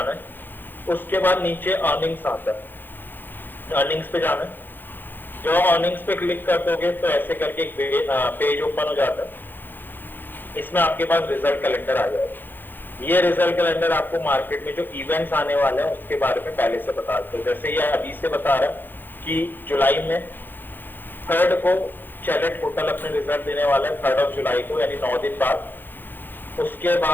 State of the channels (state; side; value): late; right; 0.093 ms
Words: है। उसके बाद नीचे अर्निंग्स आता है, अर्निंग्स पे जाना है। जो अर्निंग्स पे क्लिक कर दोगे तो ऐसे करके एक पेज ओपन हो जाता है। इसमें आपके पास रिजल्ट कैलेंडर आ जाएगा। ये रिजल्ट कैलेंडर आपको मार्केट में जो इवेंट्स आने वाले हैं उसके बारे में पहले से बता देते हैं। जैसे ये अभी से बता रहा है कि जुलाई में 3rd को चैलेट होटल अपने रिजल्ट देने वाला है, 3rd ऑफ जुलाई को, यानी 9 दिन बाद। उसके